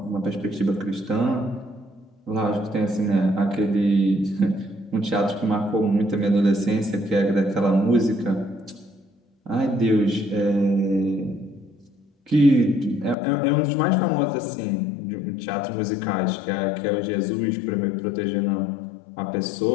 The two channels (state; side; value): drops out; right; at 13.2 s